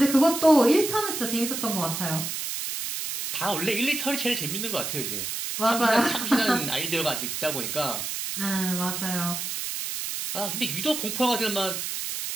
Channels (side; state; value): right; noise; hiss, 4 dB below the sound